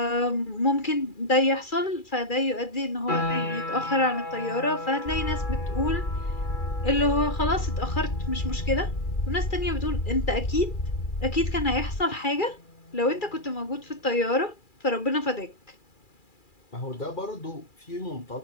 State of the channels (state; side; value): late; right; 2.4 ms